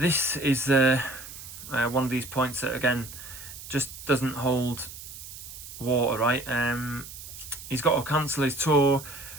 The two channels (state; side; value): noise; right; hiss, 13 dB below the sound